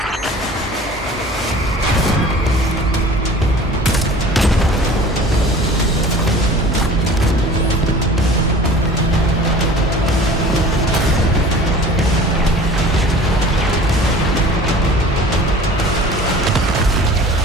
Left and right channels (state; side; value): normal; both; correlation 0.43